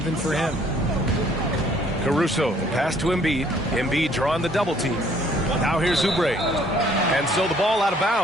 for him. Caruso, the pass to Embiid. Embiid drawing the double team. Now here's Oubre. And so the ball out of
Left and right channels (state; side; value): normal; both; correlation 0.61